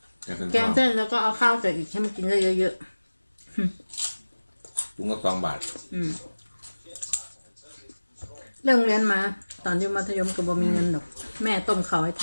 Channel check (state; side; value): inverted; both; correlation -1.00